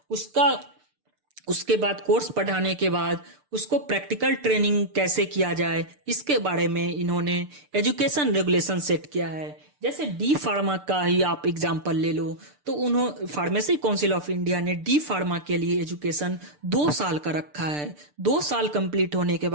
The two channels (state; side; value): late; left; 6.8 ms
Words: उसके बाद कोर्स पढ़ाने के बाद उसको प्रैक्टिकल ट्रेनिंग कैसे किया जाए, इसके बारे में इन्होंने एजुकेशन रेगुलेशन सेट किया है। जैसे डी फार्मा का ही आप एग्जांपल ले लो तो फार्मेसी काउंसिल ऑफ इंडिया ने डी फार्मा के लिए एजुकेशन 2 साल का रखा है। 2 साल कंप्लीट होने के